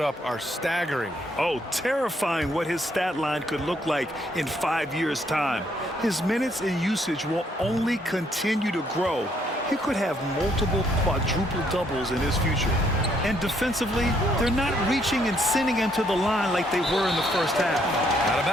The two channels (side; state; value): both; normal; correlation 0.70